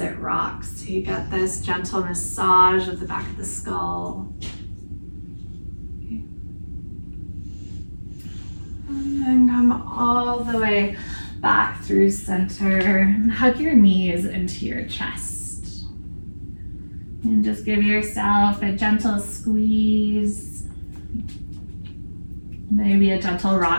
rocks, so you get this gentle massage of the back of the skull. And then come all the way back through center and hug your knees into your chest. And just give yourself a gentle squeeze. Maybe a gentle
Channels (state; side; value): inverted; both; correlation -1.00